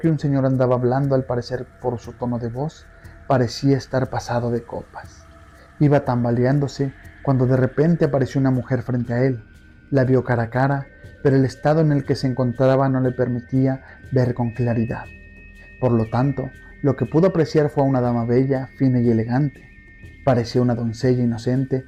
un señor andaba hablando, al parecer por su tono de voz, parecía estar pasado de copas. Iba tambaleándose cuando de repente apareció una mujer frente a él. La vio cara a cara, pero el estado en el que se encontraba no le permitía ver con claridad. Por lo tanto, lo que pudo apreciar fue a una dama bella, fina y elegante. Parecía una doncella inocente,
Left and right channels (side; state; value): both; identical; correlation 1.00